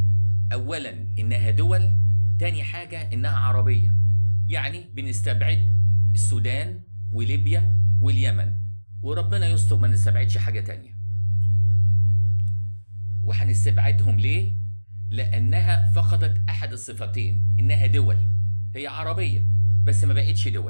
أولا إنها دول، تاني حاجة إنها عربية. يعني بنستبعد السودان وليبيا واليمن، وربنا يستر ما نستبعدش حاجة تانية. وهنستبعدهم ليه؟ لأنها فقدت أحد الصفتين، إنها دول. هي عربية بس ما بقتش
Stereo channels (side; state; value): both; inverted; correlation -1.00